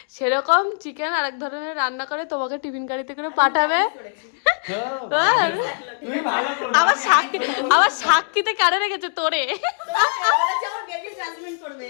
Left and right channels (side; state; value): right; silent; digital silence